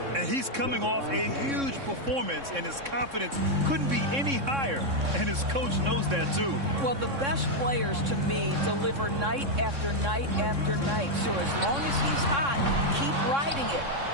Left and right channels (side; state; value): left; late; 3.6 ms